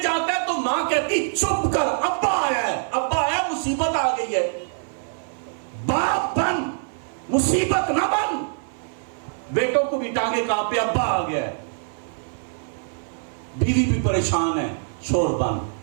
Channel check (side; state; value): left; silent; 59 dB below the other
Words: جاتا ہے تو ماں کہتی چپ کر، ابا آیا مصیبت آ گئی ہے، باپ بن مصیبت نہ بن۔ بیٹوں کو بھی ٹانگے کانپے ابا آ گیا ہے، بیوی بھی پریشان ہے، شور بن،